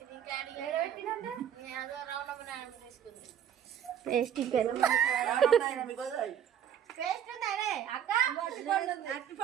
అదో రౌండ్ తీసుకుంది. పేస్ట్ పేస్ట్ ఉందానే అక్క,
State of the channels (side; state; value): left; quieter; 9.4 dB